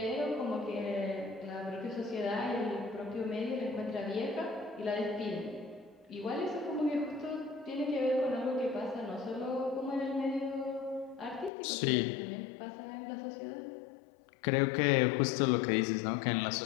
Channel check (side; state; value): right; drops out; at 11.5 s